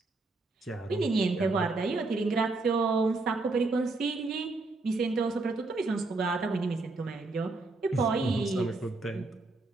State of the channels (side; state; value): left; quieter; 3.4 dB